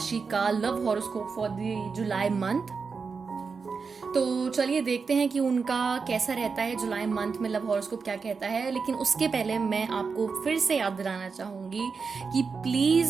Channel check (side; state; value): left; quieter; 5.1 dB